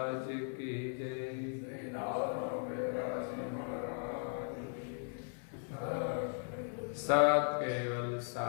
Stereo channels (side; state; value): right; silent; 53 dB below the other